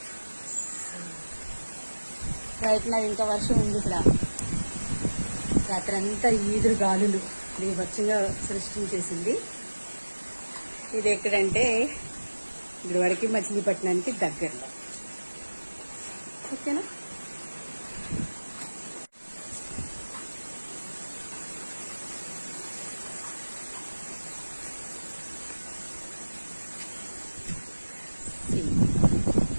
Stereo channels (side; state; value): both; inverted; correlation -1.00